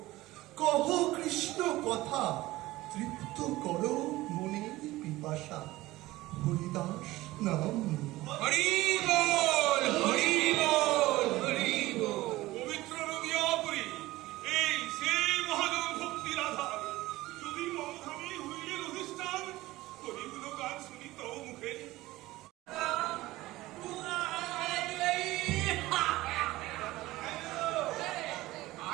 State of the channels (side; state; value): left; quieter; 18.1 dB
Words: কহ কৃষ্ণ কথা, তৃপ্ত করো মনের পিপাসা। হরিদাস নাম হরি বল, হরি বল, হরি বল। পবিত্র নদিয়াপুরী এই সেই মহাজন ভক্তির আধার। যদি মমধামী হইলেন অধিষ্ঠান, হরিগুলো গান শুনি তব মুখে।